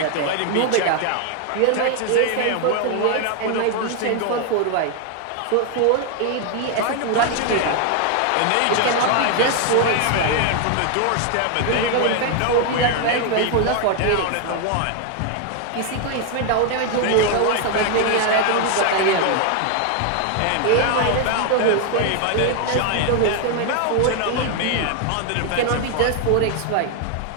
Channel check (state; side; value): different; both; correlation 0.00